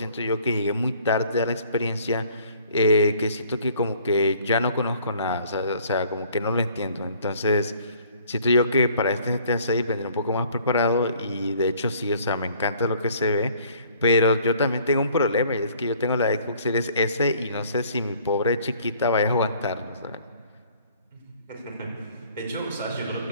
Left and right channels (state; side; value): inverted; both; correlation -0.57